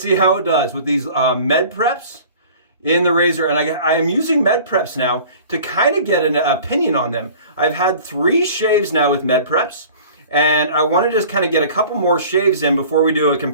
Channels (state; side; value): inverted; both; correlation -0.45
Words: see how it does with these med preps in the razor. And I am using med preps now to kind of get an opinion on them. I've had 3 shaves now with med preps, and I want to just kind of get a couple more shaves in before we do a